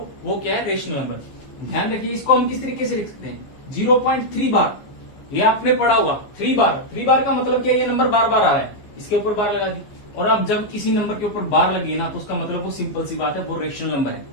वो क्या है रेशनल नंबर। ध्यान रखिए इसको हम किस तरीके से लिख सकते हैं, 0.3 बार, ये आपने पढ़ा हुआ 3 बार का मतलब क्या है, ये नंबर बार बार आ रहा है, इसके ऊपर बार लगा दी। और अब जब किसी नंबर के ऊपर बार लगी ना, तो उसका मतलब वो सिंपल सी बात है, वो रेशनल नंबर है।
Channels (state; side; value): late; right; 14 ms